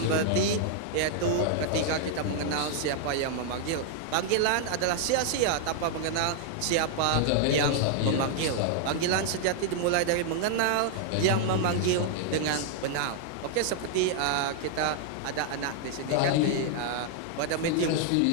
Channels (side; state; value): both; different; correlation 0.00